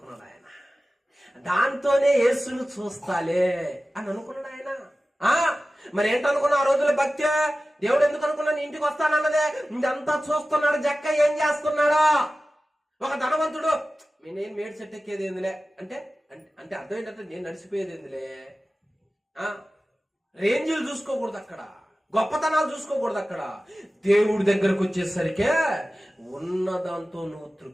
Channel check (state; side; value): normal; both; correlation 0.96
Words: ఆయన. దాంతోనే యేసును చూస్తాలే అని అనుకున్నాడు ఆయన. మరి ఏంటనుకున్నా ఆ రోజుల భక్తి? దేవుడు ఎందుకు అనుకున్నా నీ ఇంటికి వస్తానన్నదే. ఇదంతా చూస్తున్నాడు జక్క ఏం చేస్తున్నాడో. ఒక ధనవంతుడు నేను మేడి చెట్టు ఎక్కేది ఏందిలే అంటే అంటే అర్థం ఏంటంటే నేను నడిచిపోయేది ఏందిలే. రేంజ్లు చూసుకోకూడదు అక్కడ, గొప్పతనాలు చూసుకోకూడదు అక్కడ. దేవుడి దగ్గరకు వచ్చేసరికే ఉన్నదాంతో నువ్వు